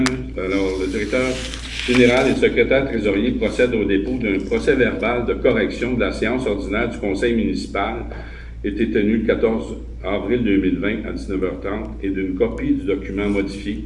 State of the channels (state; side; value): identical; both; correlation 1.00